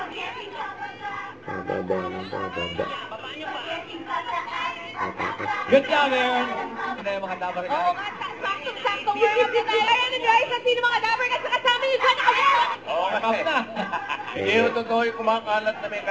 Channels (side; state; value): both; identical; correlation 1.00